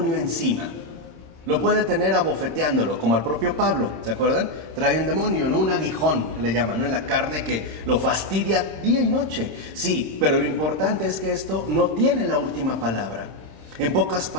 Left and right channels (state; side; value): late; left; 26 ms